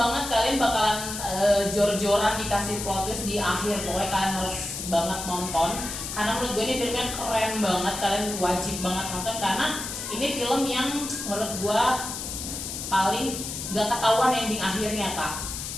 banget, kalian bakalan jor-joran dikasih plot twist di akhir. Pokoknya kalian harus banget nonton karena menurut gue ini filmnya keren banget, kalian wajib banget nonton karena ini film yang menurut gue paling gak ketahuan ending akhirnya kak.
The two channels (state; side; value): noise; left; hiss, 6 dB below the sound